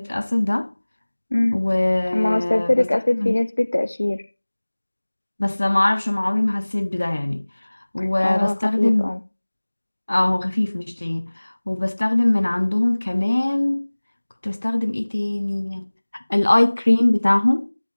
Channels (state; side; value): inverted; both; correlation -1.00